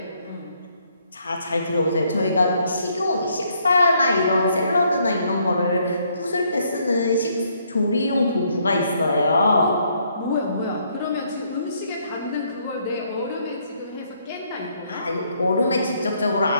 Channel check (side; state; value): both; inverted; correlation -0.70